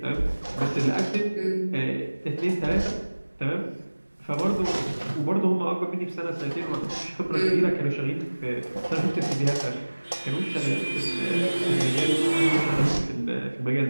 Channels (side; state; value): both; inverted; correlation -1.00